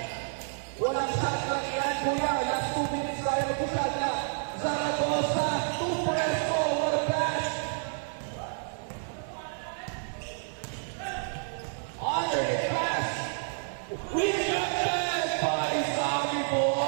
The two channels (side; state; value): left; silent; digital silence